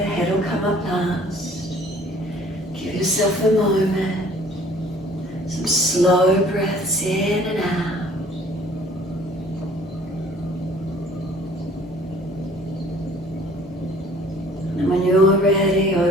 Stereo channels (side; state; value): both; normal; correlation 0.54